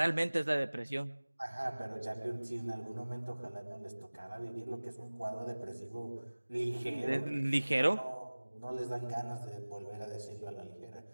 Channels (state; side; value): inverted; both; correlation -1.00